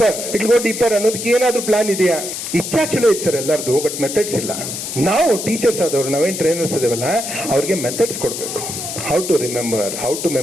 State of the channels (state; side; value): noise; left; hiss, 6 dB below the sound